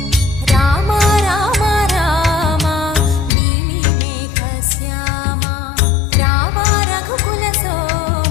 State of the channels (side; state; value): right; drops out; at 3.3 s